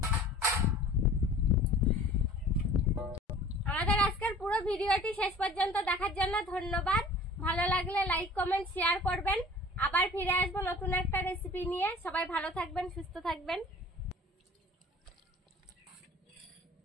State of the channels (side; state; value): both; normal; correlation 0.46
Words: আজকের পুরো ভিডিওটি শেষ পর্যন্ত দেখার জন্য ধন্যবাদ। ভালো লাগলে লাইক কমেন্ট শেয়ার করবেন। আবার ফিরে আসবো নতুন একটা রেসিপি নিয়ে। সবাই ভালো থাকবেন, সুস্থ থাকবেন।